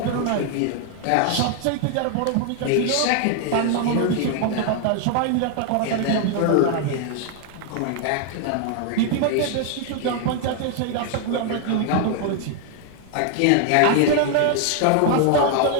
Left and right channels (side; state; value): both; different; correlation 0.00